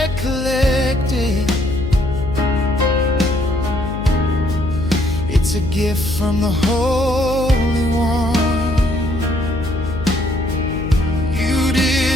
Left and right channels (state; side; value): noise; left; hum, 7 dB below the sound